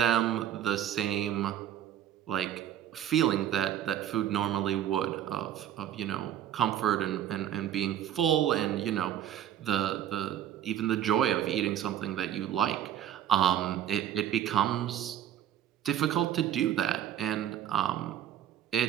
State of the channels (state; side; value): quieter; left; 10.9 dB